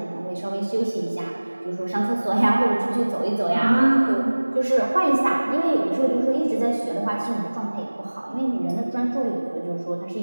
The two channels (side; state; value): both; inverted; correlation -1.00